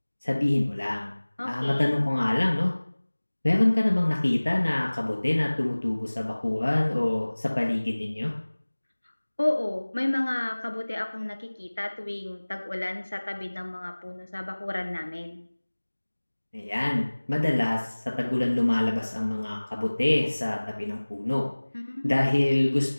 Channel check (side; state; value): both; inverted; correlation -1.00